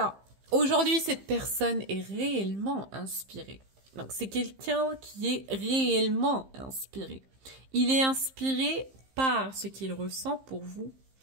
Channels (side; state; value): left; late; 15 ms